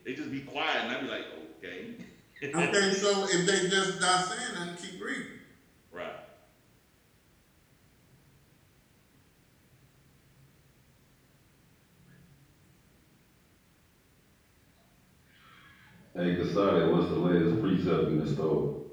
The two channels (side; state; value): both; identical; correlation 1.00